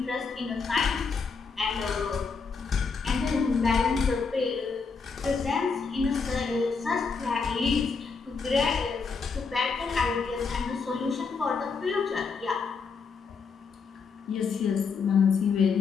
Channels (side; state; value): right; quieter; 5.1 dB